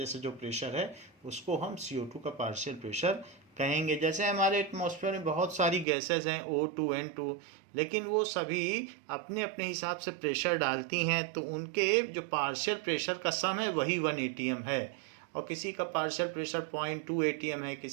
से जो प्रेशर है उसको हम CO2 का पार्शियल प्रेशर कहेंगे। जैसे हमारे एटमॉस्फेयर में बहुत सारी गैसेस हैं, O2, N2, लेकिन वो सभी अपने अपने हिसाब से प्रेशर डालती हैं, तो उनके जो पार्शियल प्रेशर का सम है वही 1 atm है, और किसी का पार्शियल प्रेशर 0.2 atm है,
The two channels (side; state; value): left; drops out; at 5.9 s